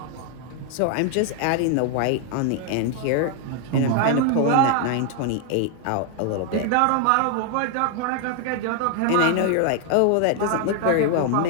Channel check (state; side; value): different; both; correlation 0.00